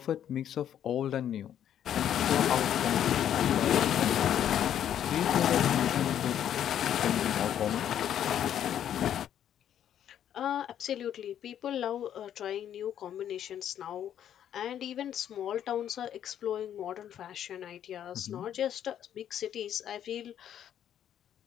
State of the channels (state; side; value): quieter; right; 10.1 dB